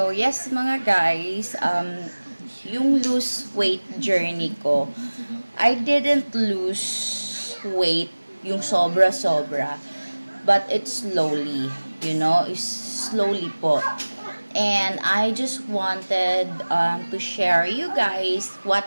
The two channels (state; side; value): inverted; both; correlation -1.00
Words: yes mga guys, yung lose weight journey ko, I didn't lose weight yung sobra-sobra, but it's slowly, it's slowly po. And I just wanted to share you guys what